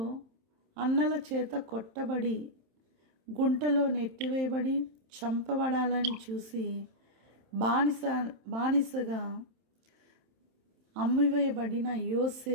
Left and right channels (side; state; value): left; late; 27 ms